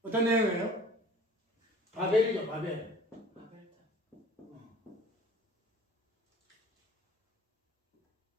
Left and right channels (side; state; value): both; normal; correlation 0.48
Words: 어떤 내용이에요? 바벨이죠, 바벨.